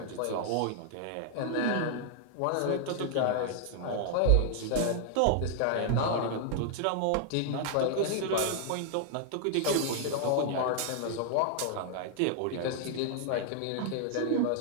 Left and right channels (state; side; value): different; both; correlation -0.01